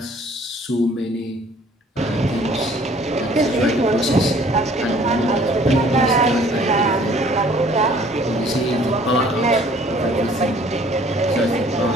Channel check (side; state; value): both; normal; correlation 0.56